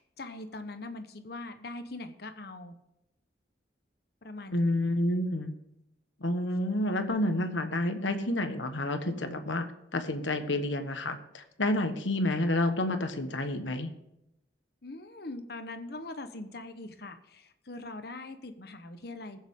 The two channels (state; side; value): normal; both; correlation 0.54